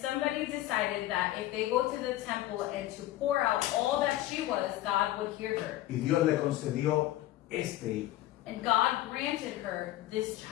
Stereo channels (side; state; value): right; quieter; 15.2 dB